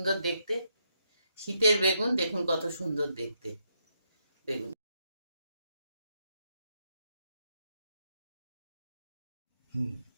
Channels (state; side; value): inverted; both; correlation -0.79